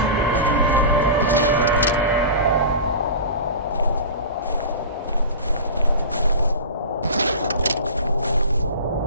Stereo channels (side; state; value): both; inverted; correlation -0.31